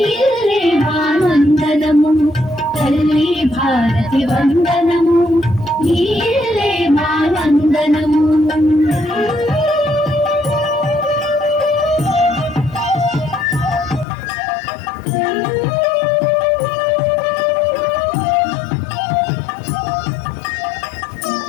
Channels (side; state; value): right; drops out; at 14.1 s